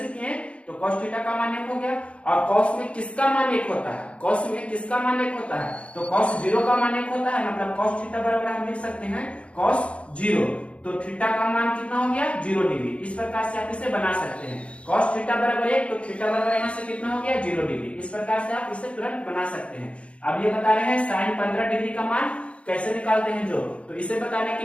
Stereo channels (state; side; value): late; right; 0.061 ms